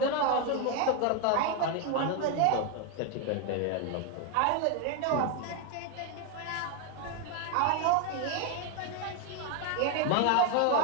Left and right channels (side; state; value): both; different; correlation 0.01